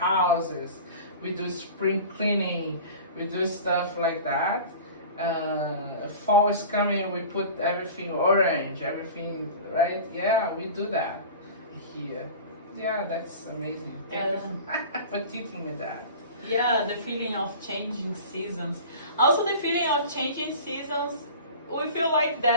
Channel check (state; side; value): inverted; both; correlation -0.38